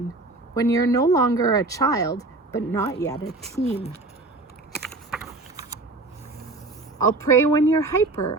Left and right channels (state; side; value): quieter; left; 3.1 dB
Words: when you're no longer a child, but not yet a teen. I'll pray when you're